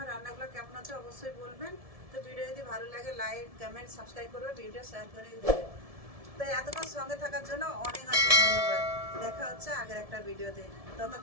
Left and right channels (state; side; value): late; left; 1.7 ms